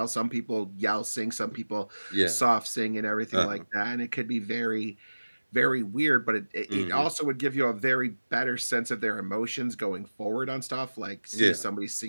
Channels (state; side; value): inverted; both; correlation -1.00